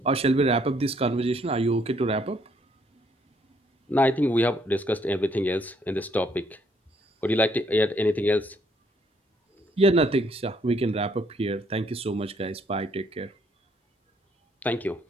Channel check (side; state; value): both; normal; correlation 0.68